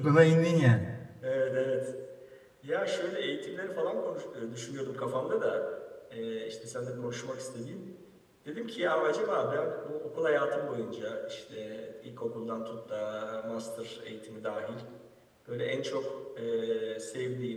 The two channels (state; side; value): identical; both; correlation 1.00